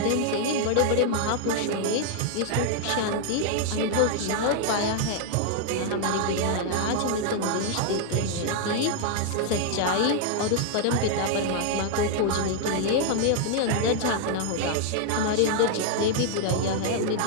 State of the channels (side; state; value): both; different; correlation 0.00